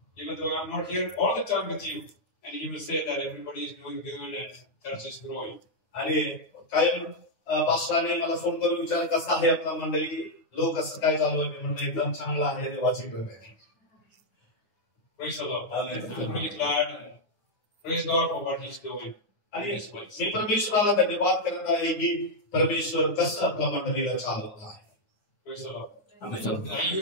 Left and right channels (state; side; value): late; right; 9.5 ms